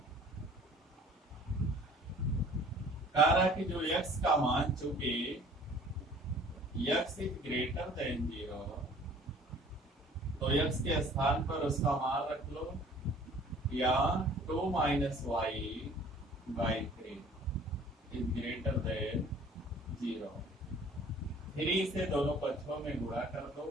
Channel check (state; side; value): normal; both; correlation 0.51